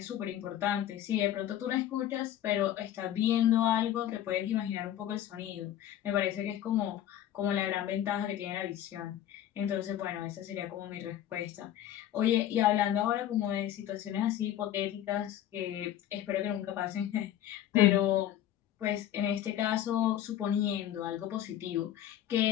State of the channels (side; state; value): right; quieter; 11.7 dB